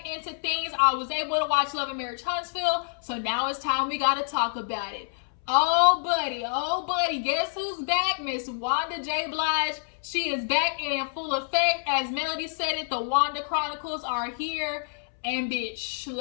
into things. I was able to watch Love&Marriage Huntsville, so now it's time we gotta talk about it. Oh buddy, guess who's back? Miss Wanda J. Blige. She is back and in full effect. As Melody said it, the Wanda Chronicles are here. And bitch,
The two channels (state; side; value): silent; right; 60 dB below the other